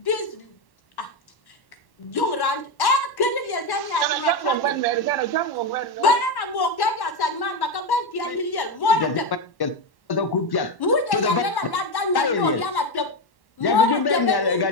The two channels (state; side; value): late; right; 1.1 ms